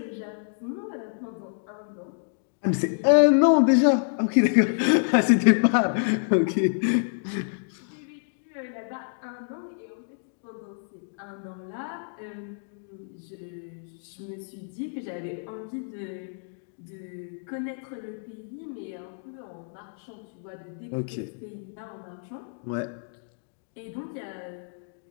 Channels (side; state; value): right; silent; digital silence